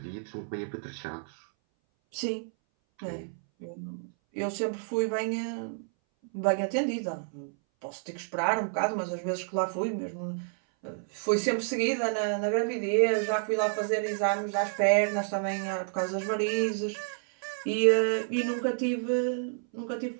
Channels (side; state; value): left; silent; 58 dB below the other